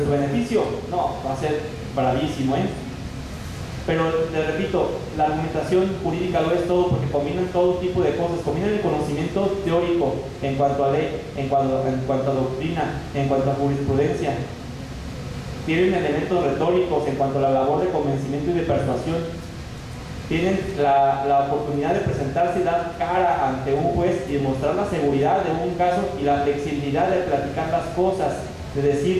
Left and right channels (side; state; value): both; identical; correlation 1.00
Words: su beneficio, no, va a ser bravísimo, ¿eh? Pero te repito, la argumentación jurídica lo es todo porque combinan todo tipo de cosas, combinan el conocimiento teórico en cuanto a ley, en cuanto a doctrina, en cuanto a jurisprudencia. Tienen elementos retóricos en cuanto a la labor de convencimiento y de persuasión. Tienen la oportunidad de presentarse y dar cara ante un juez y demostrar la seguridad de un caso y la flexibilidad de platicar las cosas, de